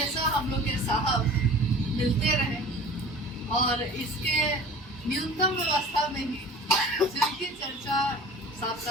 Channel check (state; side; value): normal; both; correlation 0.42